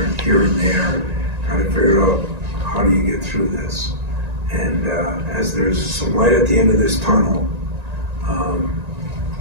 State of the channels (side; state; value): left; late; 1.9 ms